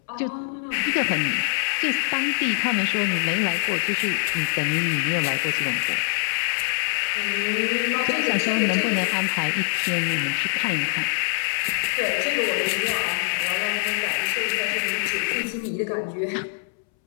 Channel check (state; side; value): silent; right; 63 dB below the other